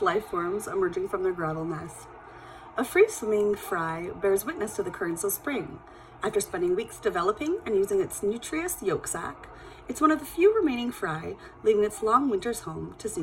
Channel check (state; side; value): identical; both; correlation 1.00